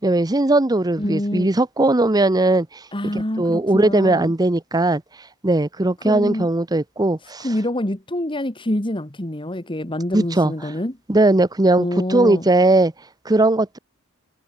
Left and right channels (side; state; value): both; normal; correlation 0.74